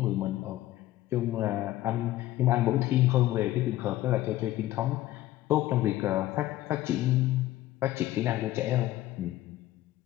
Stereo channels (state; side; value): quieter; right; 15.2 dB